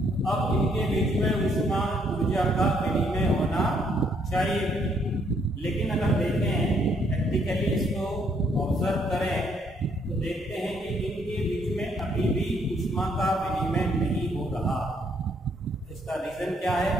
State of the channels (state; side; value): normal; both; correlation 0.69